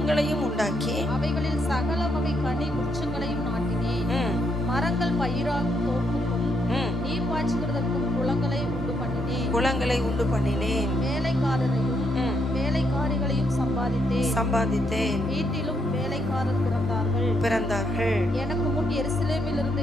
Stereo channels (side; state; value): both; normal; correlation 0.76